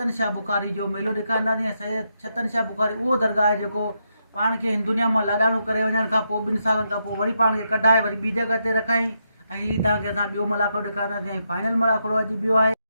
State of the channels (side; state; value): both; inverted; correlation -0.81